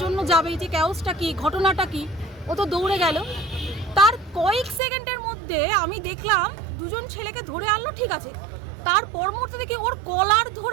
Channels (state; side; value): drops out; left; at 4.8 s